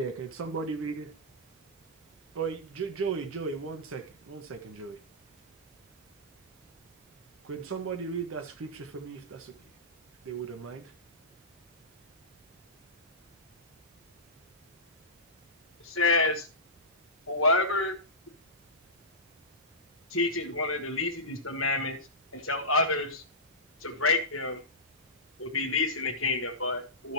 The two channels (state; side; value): normal; both; correlation -0.17